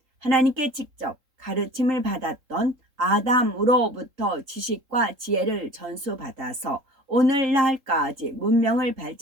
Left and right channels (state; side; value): late; left; 3.8 ms